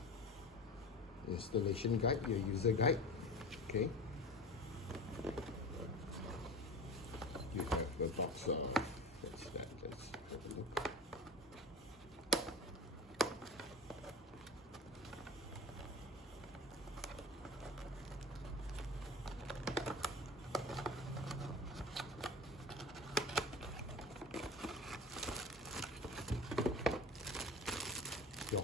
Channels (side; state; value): both; normal; correlation 0.32